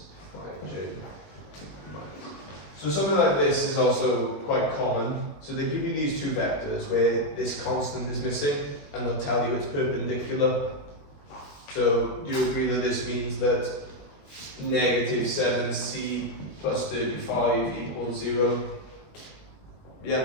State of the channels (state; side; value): late; right; 21 ms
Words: 5j. So something like this is also quite common. So they give you these two vectors where this constant is missing and they'll tell you it's perpendicular. So do you agree that this means that negative 7c plus 35 equals 0?